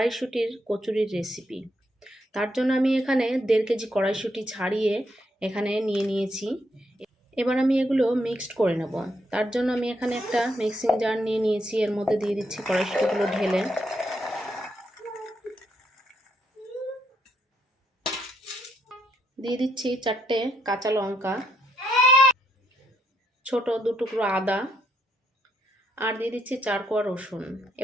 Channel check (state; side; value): normal; both; correlation 0.76